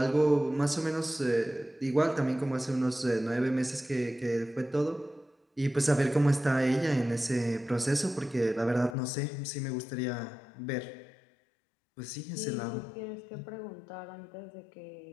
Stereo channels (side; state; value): right; drops out; at 9.0 s